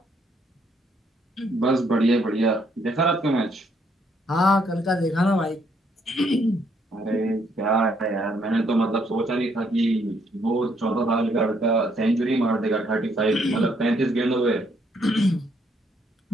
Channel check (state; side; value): normal; both; correlation 0.70